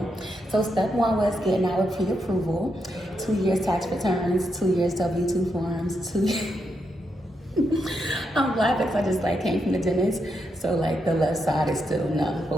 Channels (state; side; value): normal; both; correlation 0.82